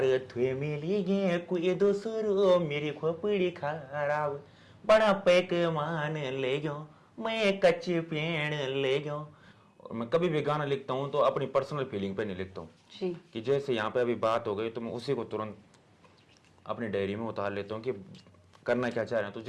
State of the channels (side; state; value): both; identical; correlation 1.00